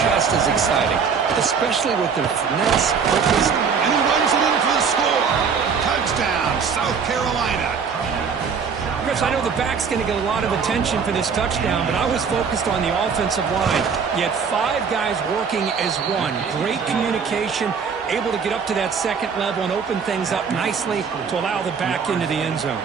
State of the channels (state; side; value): quieter; left; 6.1 dB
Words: just as exciting, especially with their finesse, quickness. And he runs it in for the score. Touchdown, South Carolina. Chris, I know the back's going to get a lot of attention for this touchdown, but I was focused on the offensive line. You had 5 guys working as one. Great communication, able to get up to that second level and open things up nicely to allow the back into the end zone.